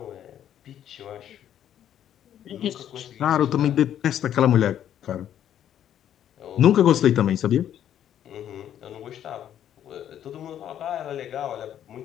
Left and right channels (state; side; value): quieter; right; 10.4 dB